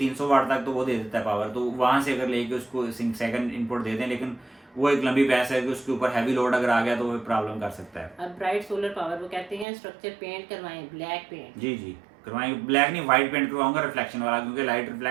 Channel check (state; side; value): drops out; left; at 9.7 s